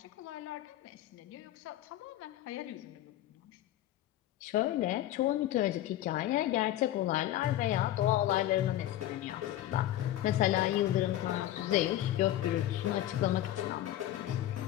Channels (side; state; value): right; quieter; 13.5 dB